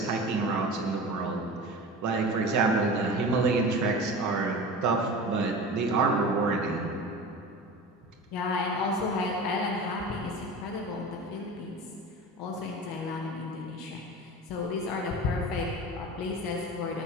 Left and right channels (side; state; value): both; normal; correlation 0.33